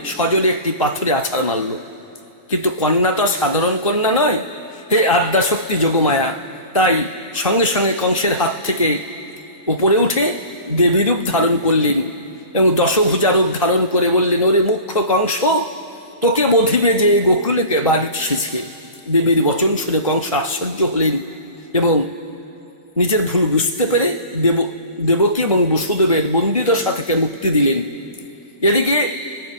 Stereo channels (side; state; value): both; inverted; correlation -0.39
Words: সজোরে একটি পাথরে আছাড় মারল। কিন্তু কন্যা তো আর সাধারণ কন্যা নয়, হে আদ্যাশক্তি যোগমায়া। তাই সঙ্গে সঙ্গে কংসের হাত থেকে উপরে উঠে দেবী রূপ ধারণ করলেন এবং দশভুজা রূপ ধারণ করে বললেন ওরে মুখ্য কংস, তোকে বধিবে যে গোকুলকে বাড়ি এসেছে। দেবীর বচন শুনে কংস আশ্চর্য হলেন এবং নিজের ভুল বুঝতে পেরে দেবকী এবং বসুদেবের বন্দিদশা থেকে মুক্তি দিলেন। এদিকে